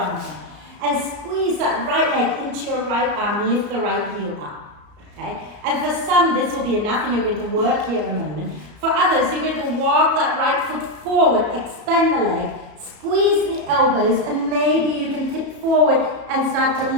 And squeeze that right leg into your right arm, lift the right heel up. Okay? And for some, this will be enough and you're going to work here a moment. For others, you're going to walk that right foot forward, extend the leg, squeeze the elbows, and maybe you can tip forward and start to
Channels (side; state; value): left; late; 34 ms